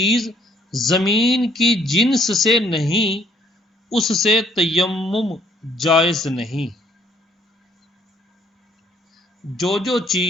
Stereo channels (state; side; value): normal; both; correlation 0.64